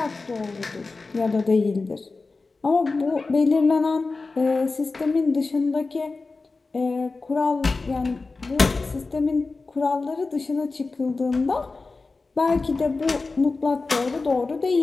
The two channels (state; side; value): quieter; right; 3.8 dB